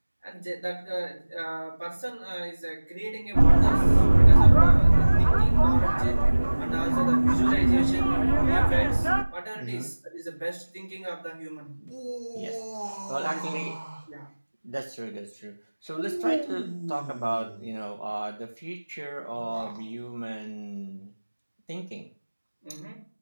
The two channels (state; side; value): inverted; both; correlation -1.00